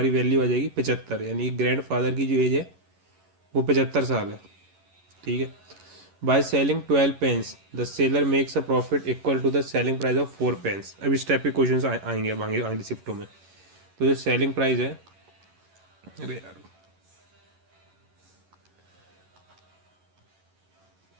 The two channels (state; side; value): late; left; 11 ms